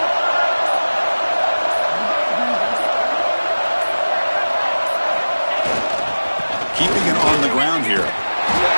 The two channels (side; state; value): both; inverted; correlation -1.00